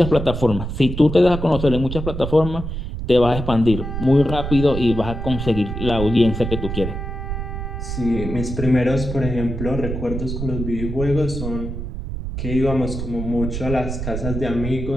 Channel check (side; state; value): right; noise; rumble, 5 dB below the sound